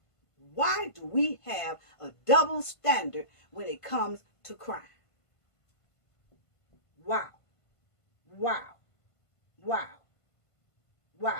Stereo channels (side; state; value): right; late; 1.5 ms